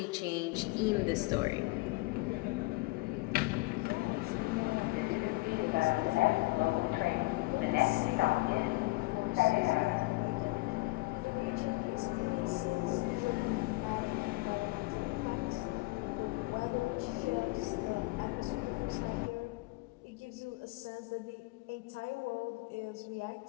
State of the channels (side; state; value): right; quieter; 22.9 dB